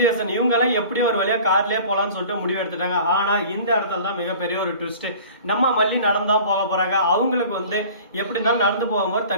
இவங்கெல்லாம் எப்படி ஒரு வழியா கார்லயே போலான்னு சொல்லிட்டு முடிவு எடுத்துட்டாங்க. ஆனா இந்த இடத்துல தான் மிகப்பெரிய ஒரு ட்விஸ்ட். நம்ம மல்லி நடந்தான் போக போறாங்க. அவங்களுக்கு எப்படி இருந்தாலும் நடந்து போகும்போது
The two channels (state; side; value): inverted; both; correlation -0.44